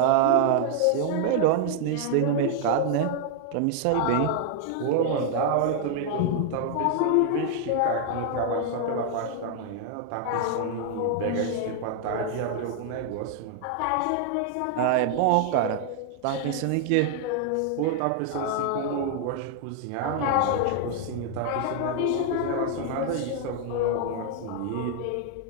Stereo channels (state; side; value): different; both; correlation 0.00